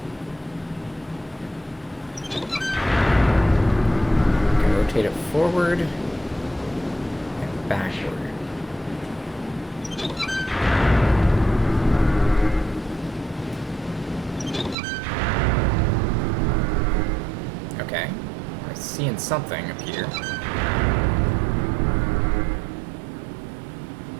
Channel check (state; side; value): drops out; left; at 14.8 s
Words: Rotate it forward and backward. Okay, I'm seeing something up here.